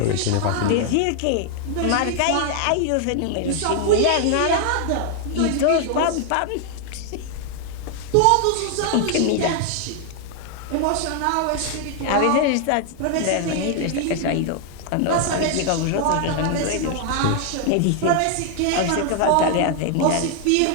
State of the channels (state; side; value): different; both; correlation 0.00